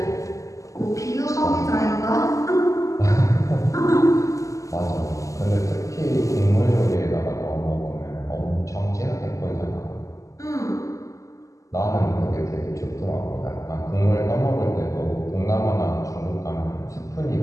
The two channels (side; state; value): right; late; 0.16 ms